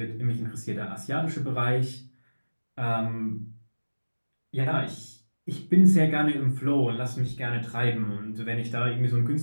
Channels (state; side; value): inverted; both; correlation -1.00